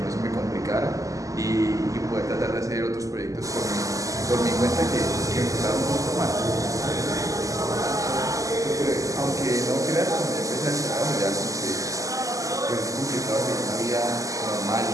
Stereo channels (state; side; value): late; left; 0.16 ms